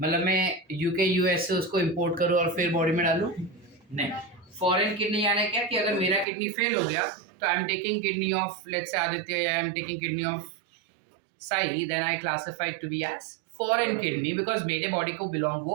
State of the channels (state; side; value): drops out; left; at 6.2 s